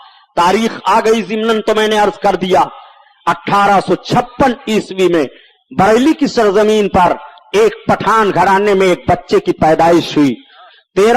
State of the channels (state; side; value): identical; both; correlation 1.00